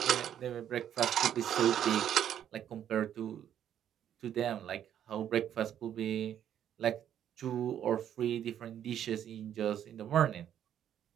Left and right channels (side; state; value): left; quieter; 10.1 dB